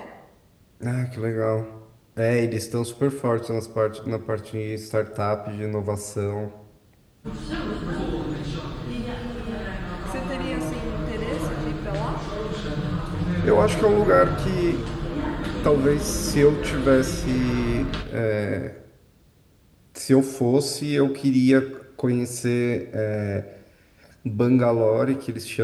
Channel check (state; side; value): identical; both; correlation 1.00